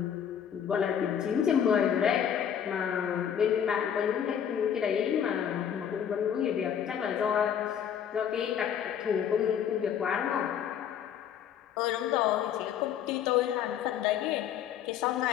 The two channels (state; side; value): quieter; right; 8.8 dB